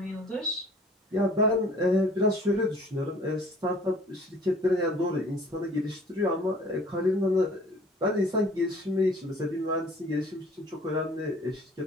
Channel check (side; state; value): both; normal; correlation 0.51